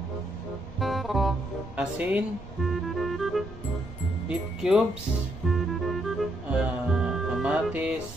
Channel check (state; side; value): noise; right; rumble, 16 dB below the sound